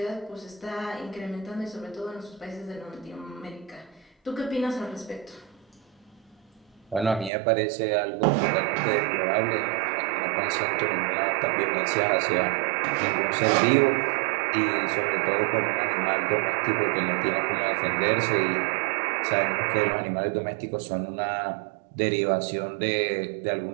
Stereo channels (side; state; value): left; drops out; at 7.3 s